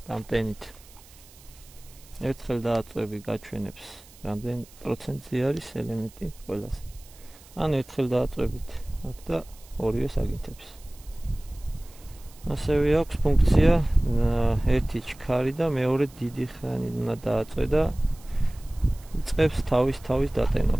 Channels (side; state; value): right; noise; hiss, 23 dB below the sound